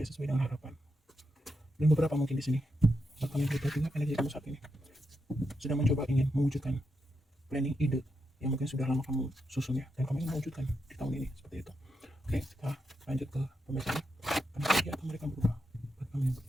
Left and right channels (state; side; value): normal; both; correlation 0.84